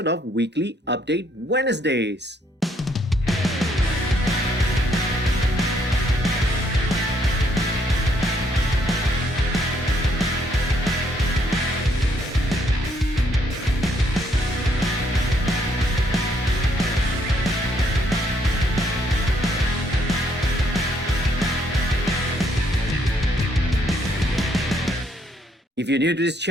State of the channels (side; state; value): both; normal; correlation 0.70